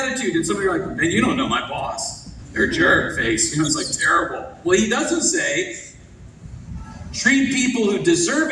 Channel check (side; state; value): both; identical; correlation 1.00